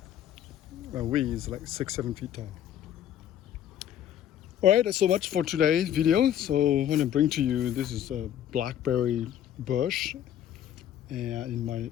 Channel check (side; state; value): right; quieter; 10.6 dB